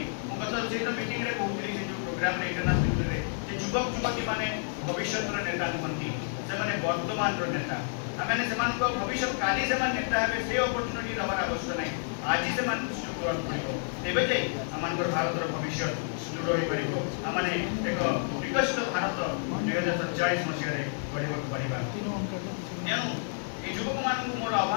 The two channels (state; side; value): silent; right; digital silence